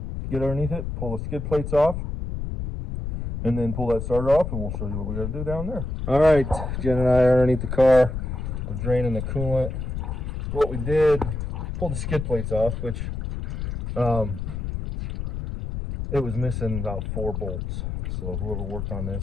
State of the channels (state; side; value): noise; left; rumble, 4 dB below the sound